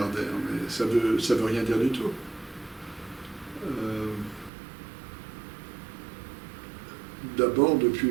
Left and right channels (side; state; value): left; drops out; at 4.5 s